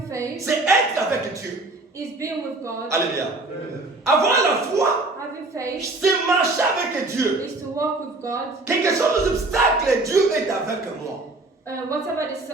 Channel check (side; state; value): left; quieter; 3.1 dB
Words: faith, c'est être avec Dieu. is being with God. Alléluia. Avoir la foi, having faith c'est marcher avec Dieu. is to walk with God. Quel que soient les obstacles, Dieu est avec moi. Whatever